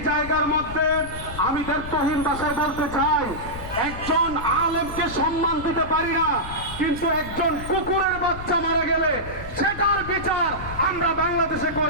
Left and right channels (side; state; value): left; noise; rumble, 11 dB below the sound